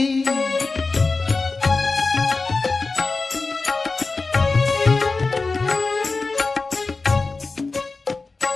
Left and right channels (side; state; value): right; quieter; 3.8 dB